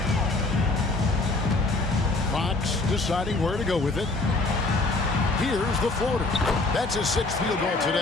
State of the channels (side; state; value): right; quieter; 3.2 dB